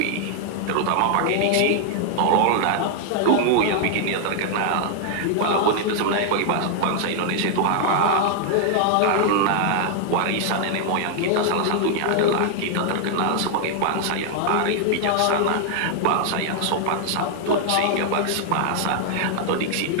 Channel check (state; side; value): different; both; correlation 0.00